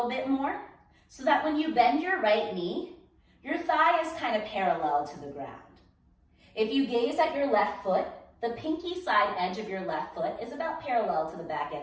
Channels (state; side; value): identical; both; correlation 1.00